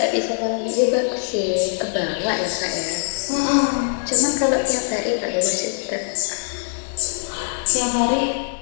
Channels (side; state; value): right; silent; 64 dB below the other